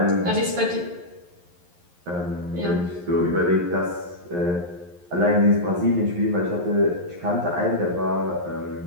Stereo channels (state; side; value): late; left; 11 ms